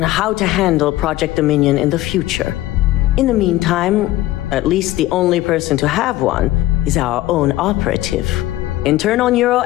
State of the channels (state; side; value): quieter; right; 16.0 dB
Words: how to handle Project Dominion in the future. In the meantime, at least the only person to have one is our own operative. Internal